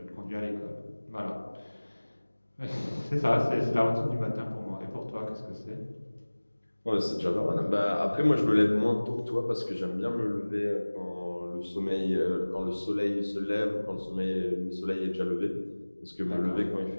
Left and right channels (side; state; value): both; inverted; correlation -1.00